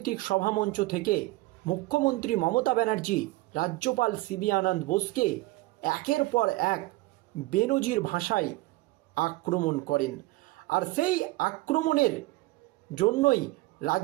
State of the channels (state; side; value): quieter; left; 20.0 dB